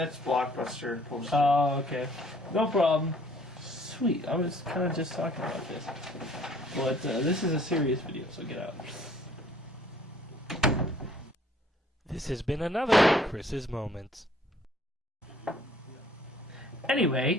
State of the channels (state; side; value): normal; both; correlation 0.58